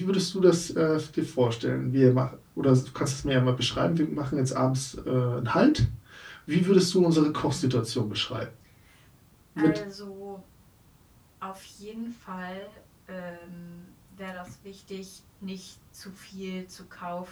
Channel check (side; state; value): both; identical; correlation 1.00